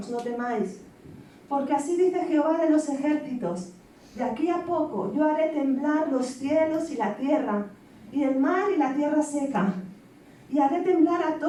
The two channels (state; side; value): identical; both; correlation 1.00